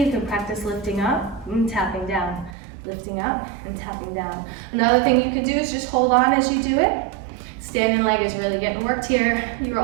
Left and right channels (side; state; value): left; drops out; at 2.6 s